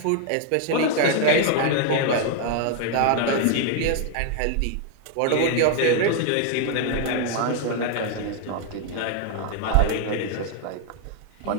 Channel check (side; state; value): both; different; correlation 0.00